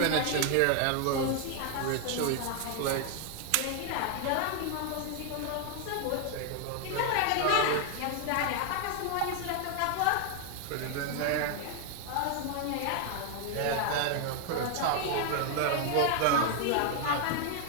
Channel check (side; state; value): both; different; correlation 0.00